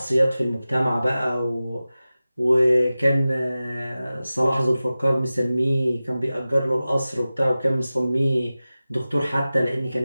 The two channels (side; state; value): both; inverted; correlation -0.96